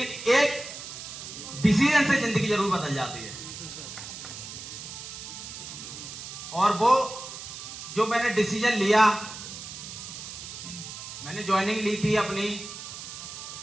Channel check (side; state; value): right; noise; hiss, 10 dB below the sound